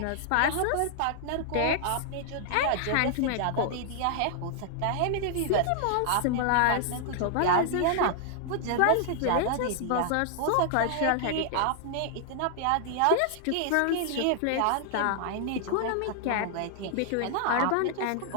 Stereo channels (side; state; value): both; different; correlation -0.01